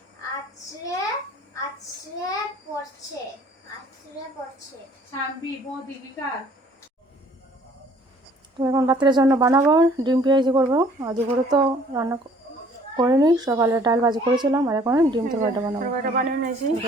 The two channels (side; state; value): both; normal; correlation 0.56